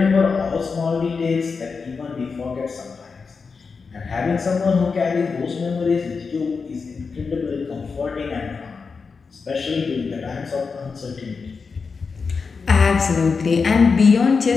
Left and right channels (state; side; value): quieter; right; 5.0 dB